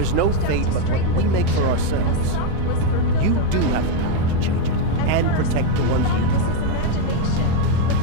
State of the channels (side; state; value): both; different; correlation 0.02